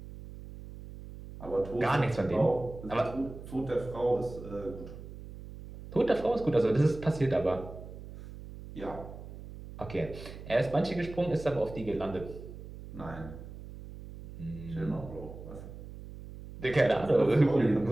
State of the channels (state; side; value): noise; right; hum, 13 dB below the sound